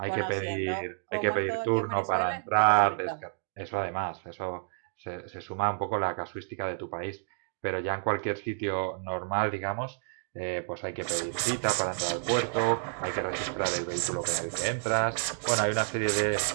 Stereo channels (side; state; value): left; silent; digital silence